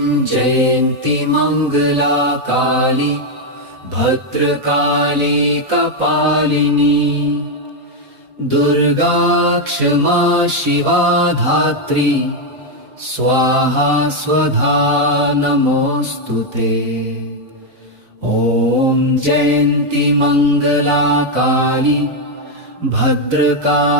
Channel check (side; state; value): left; late; 4.0 ms